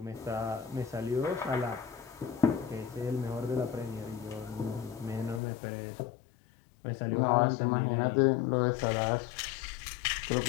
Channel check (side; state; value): right; drops out; at 5.4 s